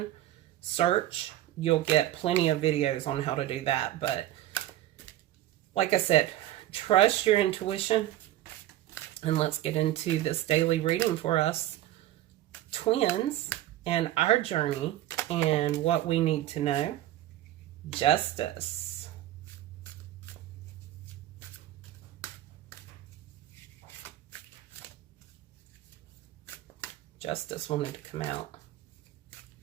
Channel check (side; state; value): left; quieter; 14.0 dB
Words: search, you'll get plenty of videos on how to do that. But like I said, trust your intuition. And let's get into this daily reading for us twins and our journey and what we need to know. Justice. Justice wanted to come out.